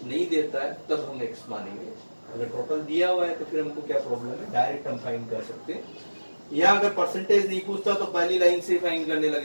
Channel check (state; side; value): inverted; both; correlation -1.00